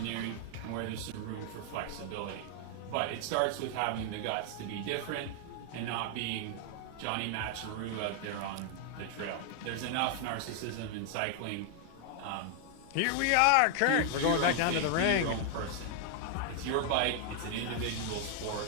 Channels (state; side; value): different; both; correlation 0.00